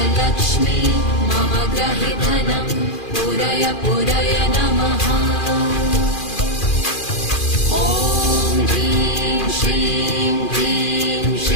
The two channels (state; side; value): late; right; 2.4 ms